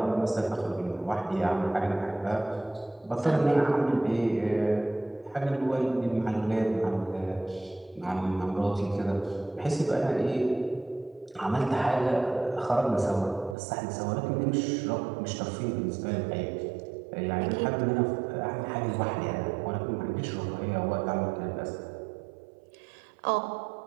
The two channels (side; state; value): left; drops out; at 13.6 s